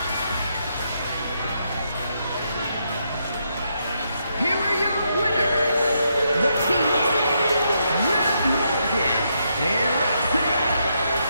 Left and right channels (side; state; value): both; inverted; correlation -0.79